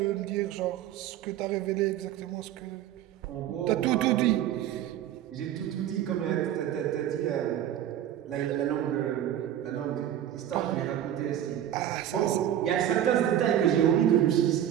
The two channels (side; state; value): left; quieter; 11.1 dB